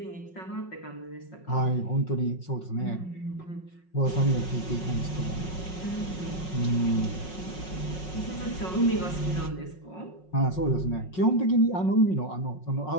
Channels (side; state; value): right; late; 5.5 ms